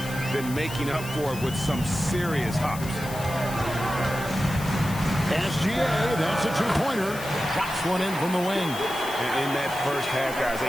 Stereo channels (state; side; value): noise; left; hiss, 13 dB below the sound